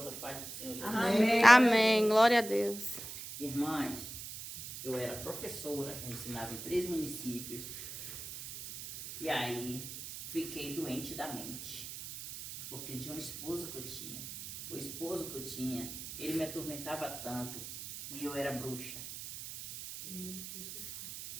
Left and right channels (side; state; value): right; noise; hiss, 9 dB below the sound